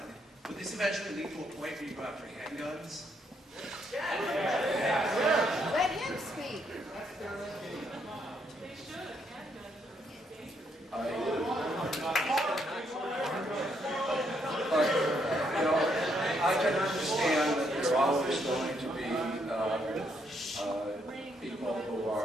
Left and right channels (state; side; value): normal; both; correlation 0.74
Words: would this eventually lead to a point where you go after handguns? Let him speak. I can understand that there are always going to be people who